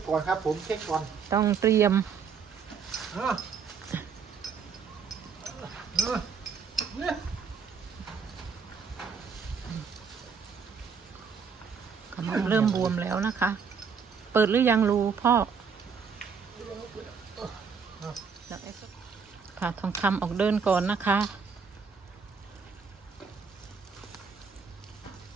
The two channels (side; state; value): left; quieter; 6.1 dB